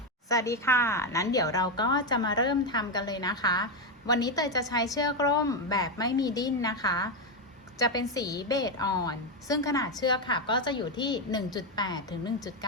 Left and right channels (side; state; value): both; normal; correlation 0.07